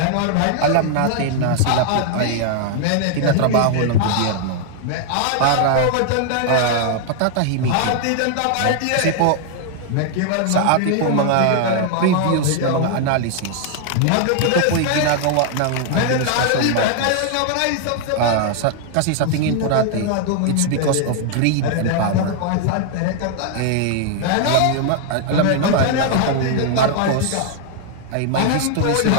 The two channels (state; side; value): different; both; correlation 0.00